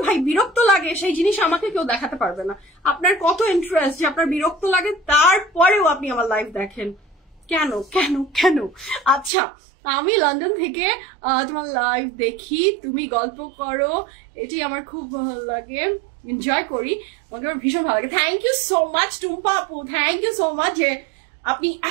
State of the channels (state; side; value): drops out; left; at 9.3 s